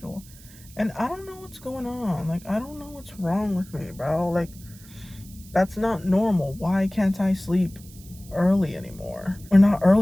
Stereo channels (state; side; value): noise; right; hiss, 22 dB below the sound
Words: And I don't know what's going on. Like, I don't know what's wrong with me, bro. Like, that's not normal. Why can't I sleep early anymore? Or not